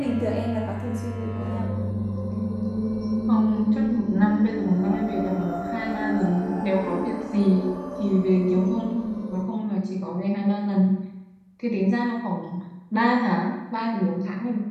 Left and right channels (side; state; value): both; identical; correlation 1.00